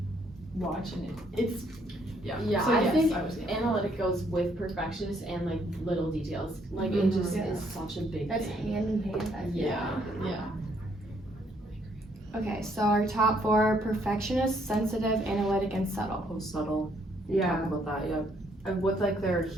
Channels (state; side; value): normal; both; correlation 0.69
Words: watch, and it's Yeah, So I yes, think I would say analytic goes with perfectionist and like little details. Like it just Yeah. is such a big That's thing. hand in hand. I feel. yeah. Okay, so our top four are perfectionist, sensitive, analytic, and subtle. Oh, subtle. Yeah. Talk about that, yeah. And with like their